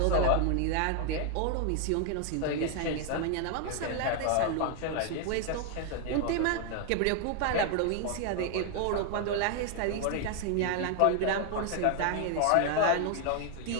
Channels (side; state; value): both; different; correlation 0.00